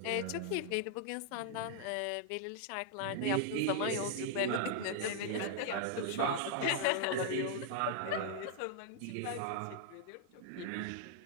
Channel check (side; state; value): both; different; correlation -0.01